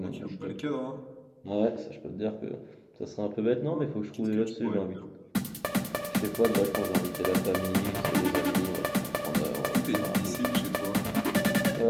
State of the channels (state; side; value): identical; both; correlation 1.00